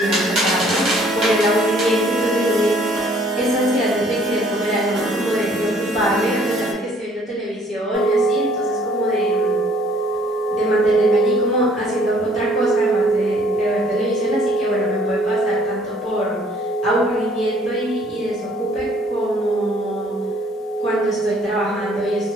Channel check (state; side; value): normal; both; correlation 0.60